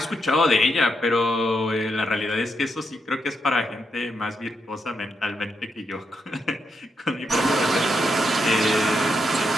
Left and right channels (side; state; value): both; normal; correlation 0.81